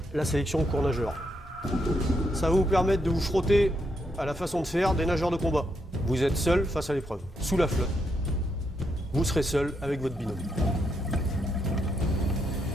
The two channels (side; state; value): both; normal; correlation 0.79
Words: la sélection cours nageur. Ça va vous permettre de vous frotter à la façon de faire des nageurs de combat. Vous êtes seul face à l'épreuve, sous la flotte. Vous serez seul avec votre binôme.